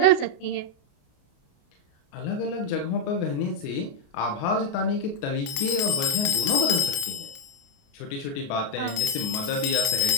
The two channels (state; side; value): late; right; 28 ms